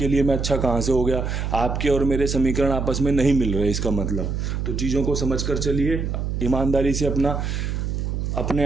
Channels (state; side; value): noise; right; hum, 2 dB below the sound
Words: लिए मैं अच्छा कहाँ से हो गया? आपके और मेरे समीकरण आपस में नहीं मिल रहे इसका मतलब। तो चीज़ों को समझ कर चलिए, ईमानदारी से अपने